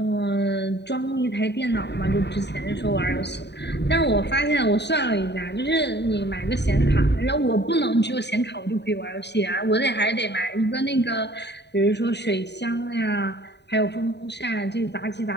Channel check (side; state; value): right; late; 0.50 ms